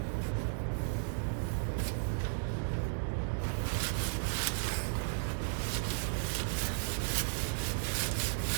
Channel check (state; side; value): silent; left; digital silence